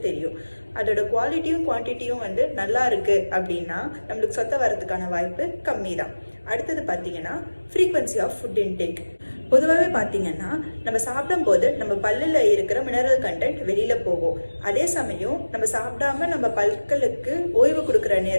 தெரியும். அதோட குவாலிட்டியும் குவான்டிட்டியும் நல்லா இருக்குது அப்படின்னா நம்மளுக்கு சொத்தை வரதுக்கான வாய்ப்பு கம்மி தான். அடுத்தது பார்த்தீங்கன்னா ஃப்ரீக்வன்சி ஆஃப் ஃபுட் இன்டேக். பொதுவாகவே பார்த்தீங்கன்னா நம்ம சாப்பிடும்போது நம்ம பல்லில் இருக்கிற மினரல் கண்டென்ட் வெளியில் போகும். அதே சமயம் நம்ம சாப்பிடாம நம்ம பற்களுக்கு ஓய்வு கொடுக்குற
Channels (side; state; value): both; inverted; correlation -1.00